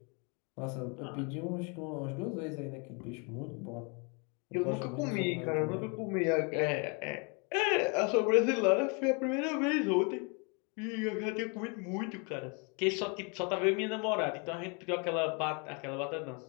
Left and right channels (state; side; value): quieter; right; 33.9 dB